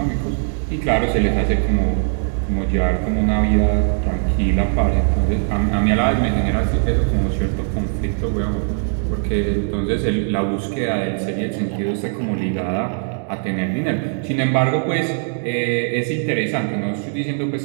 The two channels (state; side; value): silent; left; 66 dB below the other